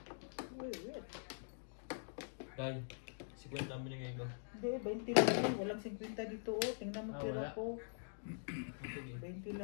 Wait. Dahil, 50 ang binigay ko. Hindi, 20 lang yun. Walang 50 dito. Oh. Tingnan mo Ah, tira wala. ko. Sige. 20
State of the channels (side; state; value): right; silent; digital silence